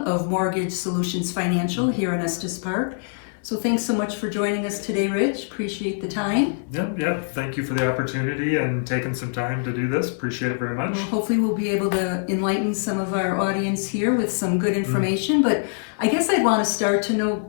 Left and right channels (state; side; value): silent; right; 60 dB below the other